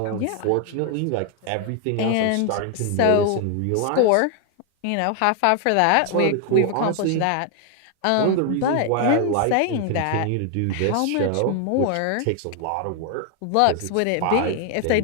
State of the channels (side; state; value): both; different; correlation 0.00